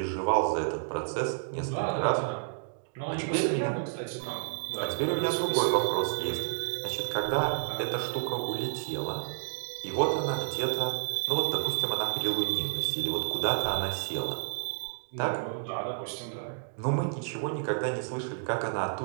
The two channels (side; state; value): left; silent; digital silence